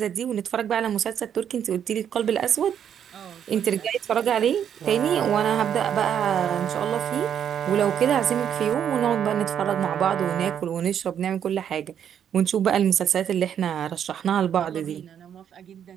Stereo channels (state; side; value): quieter; left; 9.0 dB